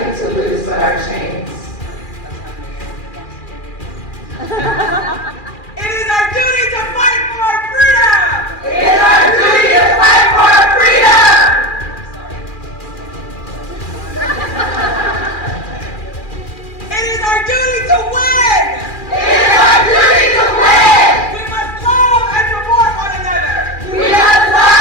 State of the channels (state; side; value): late; right; 2.4 ms